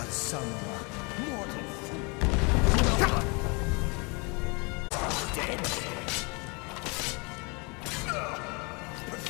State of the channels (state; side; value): quieter; right; 30.3 dB